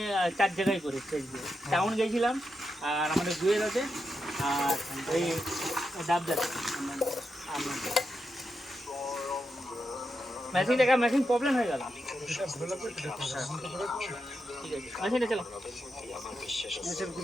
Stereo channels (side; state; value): both; normal; correlation 0.86